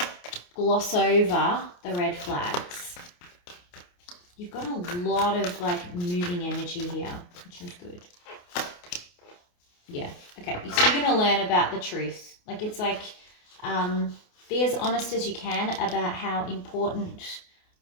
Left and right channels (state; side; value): late; right; 28 ms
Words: gloss over the red flags. You've got a lot of like moving energy here, which is good. Yeah, okay, so you're going to learn about the truth. Like, it's like, be as honest as you can about how important